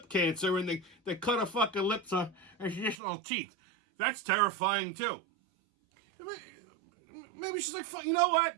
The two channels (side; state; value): left; drops out; at 3.0 s